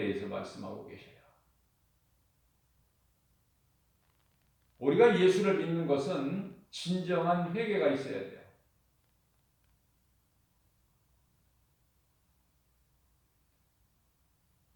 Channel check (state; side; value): identical; both; correlation 1.00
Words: 말씀하고 계셔요. 우리가 예수를 믿는 것은 진정한 회개가 있어야 돼요.